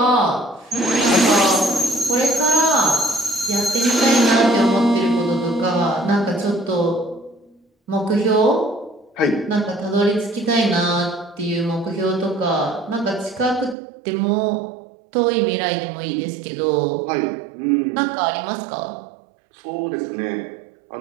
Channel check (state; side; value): drops out; left; at 13.8 s